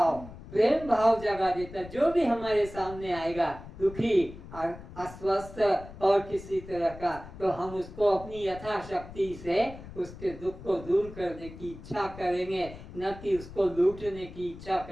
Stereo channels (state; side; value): noise; left; rumble, 15 dB below the sound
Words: प्रेम भाव जगा देता। जो भी हमारे सामने आएगा दुखी, अस्वस्थ और किसी तरह का, तो हम उसको अपनी यथाशक्ति से उसके दुख को दूर करने की इच्छा करेंगे, न कि उसको लूटने की इच्छा